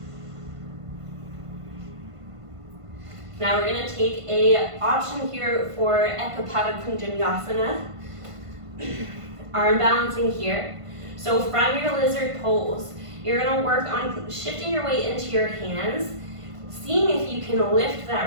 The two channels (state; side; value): late; left; 1.5 ms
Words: Now we're gonna take a option here for Ekapada Kunjanyasana. Arm balancing here. So from your lizard pose, you're gonna work on shifting your weight into your hands, seeing if you can lift